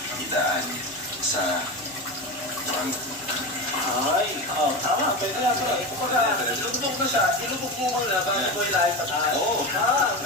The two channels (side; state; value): both; normal; correlation 0.21